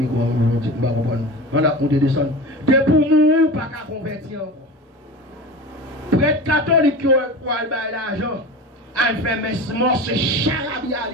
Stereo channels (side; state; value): both; normal; correlation 0.31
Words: vais pas comprendre. On a compté descendre. De pour mourir, pas qu'à convertir encore. Prêtre catholique qui a l'argent, elle fait mes morts, c'est charabia